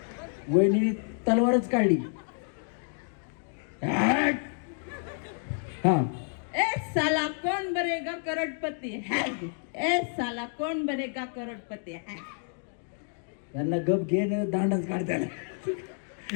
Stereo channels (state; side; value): silent; right; 58 dB below the other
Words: वहिनी तलवारच काढली. हा ए साला कौन बनेगा करोड़पति है? ए साला कौन बनेगा करोड़पति है? त्यांना गप घेणं दांडच काढताना